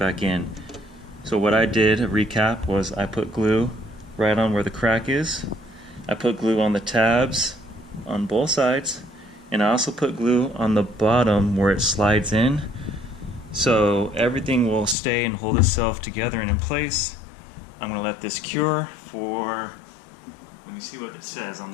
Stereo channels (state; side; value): drops out; right; at 15.0 s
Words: in. So what I did, a recap, was I put glue right on where the crack is. I put glue on the tabs on both sides, and I also put glue on the bottom where it slides in. So everything will stay and hold itself together and in place. I'm going to let this cure for, let me see what it says on